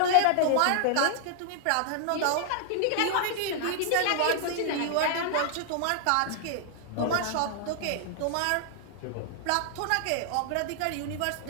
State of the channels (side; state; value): both; different; correlation -0.01